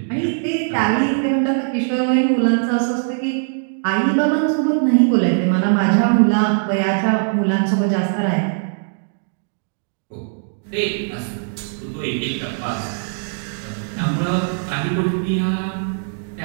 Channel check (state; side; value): silent; left; digital silence